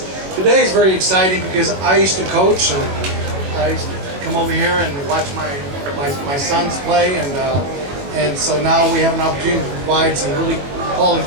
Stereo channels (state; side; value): late; left; 21 ms